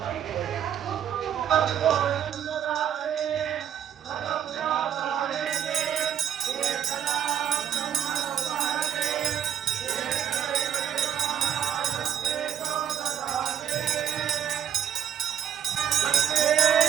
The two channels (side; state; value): left; quieter; 9.4 dB